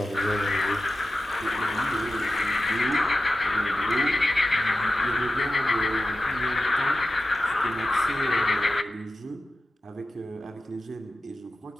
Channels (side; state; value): both; normal; correlation 0.93